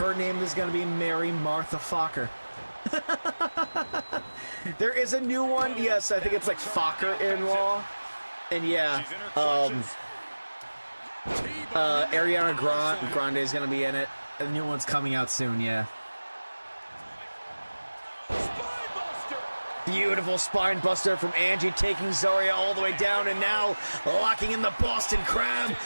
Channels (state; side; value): inverted; both; correlation -1.00